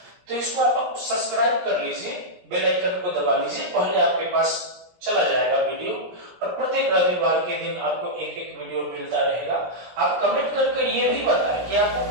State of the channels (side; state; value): left; late; 17 ms